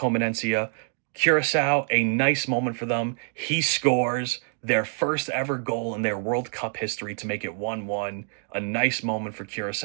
Curaçao, a nice moment for them. He scores their first ever goal in their World Cup history to make it 1-1. A nice moment for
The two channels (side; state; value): left; silent; 59 dB below the other